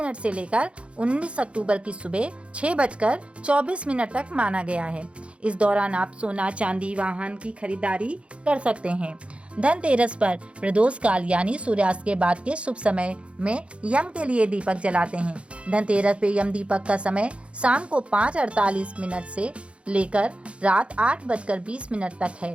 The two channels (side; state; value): left; late; 0.060 ms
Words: से लेकर 19 अक्टूबर की सुबह 6:24 तक माना गया है। इस दौरान आप सोना, चांदी, वाहन की खरीदारी कर सकते हैं। धनतेरस पर प्रदोष काल यानी सूर्यास्त के बाद के शुभ समय में यम के लिए दीपक जलाते हैं। धनतेरस पे यम दीपक का समय शाम को 5:48 से लेकर रात 8:20 तक